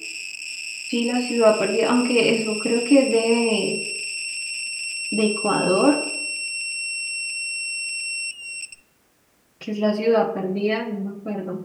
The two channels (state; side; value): identical; both; correlation 1.00